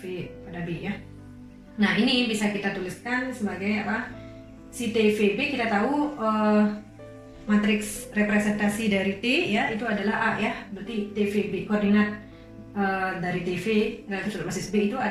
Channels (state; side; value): identical; both; correlation 1.00